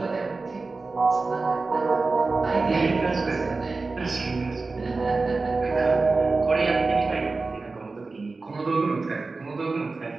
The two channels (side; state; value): left; quieter; 3.8 dB